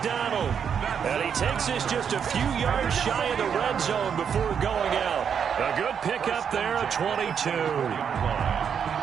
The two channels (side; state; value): left; quieter; 7.4 dB